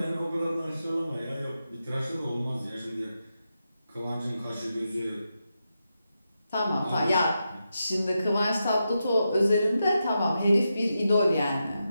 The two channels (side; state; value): both; inverted; correlation -0.87